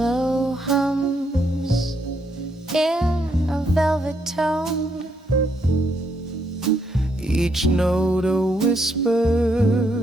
hums in a velvet tone, each note a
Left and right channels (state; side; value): normal; both; correlation 0.75